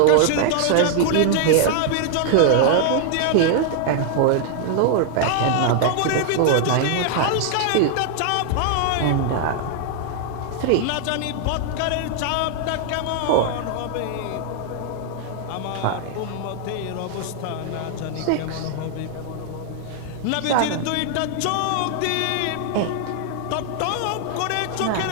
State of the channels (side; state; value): both; different; correlation 0.00